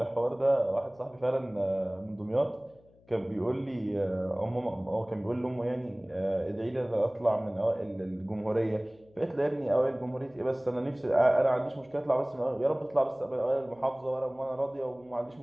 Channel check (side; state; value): left; noise; hum, 29 dB below the sound